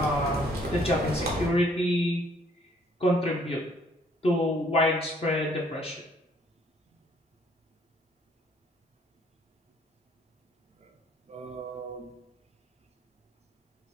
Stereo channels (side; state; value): both; normal; correlation 0.63